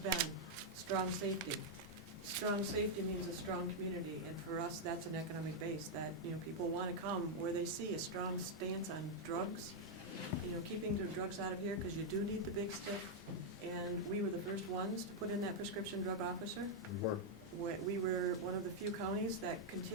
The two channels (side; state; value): both; normal; correlation -0.02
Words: strong safety. Strong safety means a strong community, and for us, that's an economic base, that, people want to come where they see a strong stance on drugs, keeping the drugs out of here, because you do need the big stick. And we were the first ones to put in that prescription drug officer. We were one of the few counties that